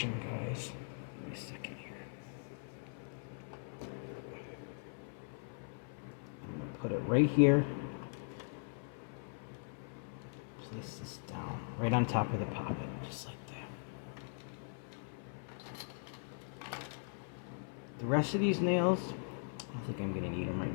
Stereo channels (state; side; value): silent; right; 51 dB below the other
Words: guys. Give me a second here. I'm gonna put it right here. Place this down right on top of the poppet, just like that. The rest of these nails, I don't think I'm gonna need them right